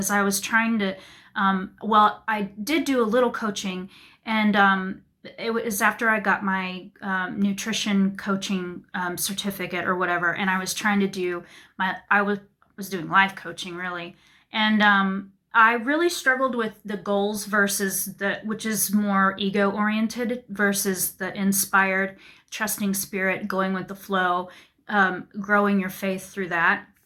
I was trying to, I did do a little coaching, and it was after I got my nutrition coaching certificate or whatever, and I was trying to do I was doing life coaching really, and I really struggled with the goals versus which is more ego oriented, versus the inspired, trusting spirit, going with the flow, growing your faith through that.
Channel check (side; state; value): both; identical; correlation 1.00